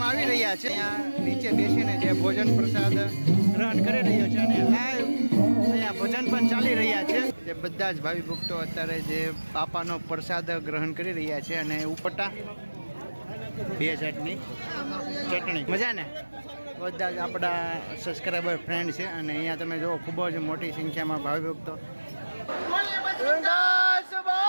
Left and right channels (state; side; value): inverted; both; correlation -1.00